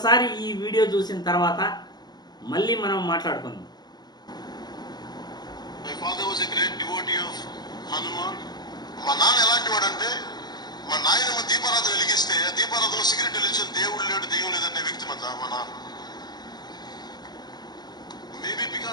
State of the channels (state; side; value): late; right; 0.20 ms